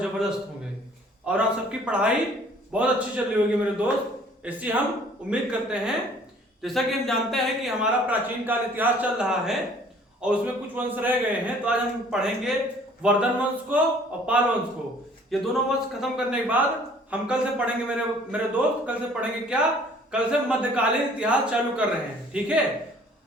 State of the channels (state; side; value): normal; both; correlation 0.55